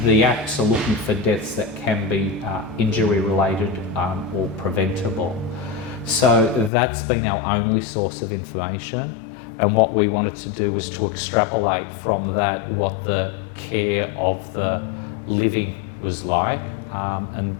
The acts are looking for deaths that can be injury related or preventable. So that's been our only source of information, and what we wanted to do was to extrapolate from that what the care of the living was like, and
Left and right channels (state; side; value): drops out; right; at 6.7 s